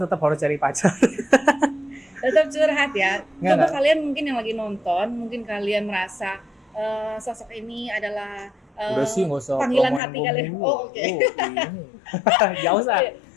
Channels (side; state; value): right; drops out; at 10.0 s